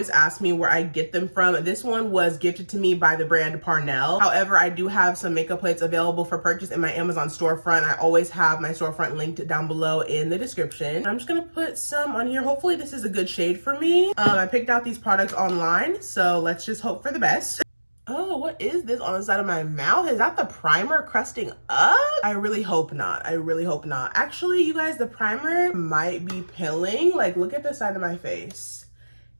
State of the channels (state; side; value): inverted; both; correlation -1.00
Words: ask me where I get them from. This one was gifted to me by the brand Parnell. However, I do have some makeup plates available for purchase in my Amazon storefront. I always have my storefront linked down below in the description. I'm just going to put some on here. Hopefully this is a good shade for me. I picked out these products online, so let's just hope for the best. Oh, what is this on the side of my mouth? Is that the primer crusting up? I really hope not. I really hope not. Actually, you guys, the primer might be pilling. Like, look at the side of my face.